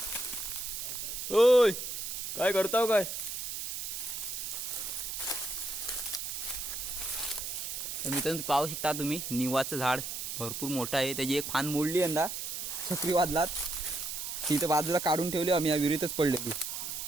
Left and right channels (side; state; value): right; noise; hiss, 5 dB below the sound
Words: ओय काय करताव काय. तर मित्रांनो पाहू शकता तुम्ही निवाचं झाड भरपूर मोठं आहे. त्याची एक फान मोडली यंदा चक्रीवादलात. ती तर बाजूला काढून ठेवली आम्ही, या विहिरीतच पडलेली.